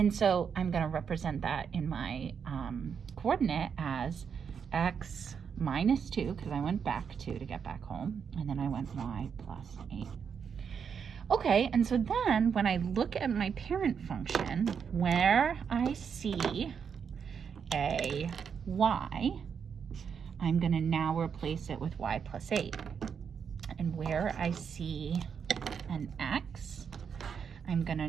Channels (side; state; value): left; quieter; 6.9 dB